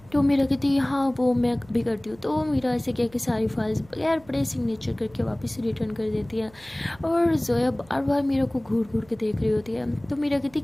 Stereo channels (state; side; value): noise; right; hum, 26 dB below the sound